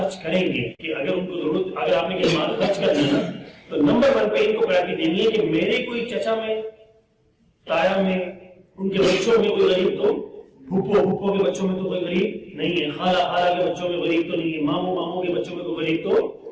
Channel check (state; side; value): identical; both; correlation 1.00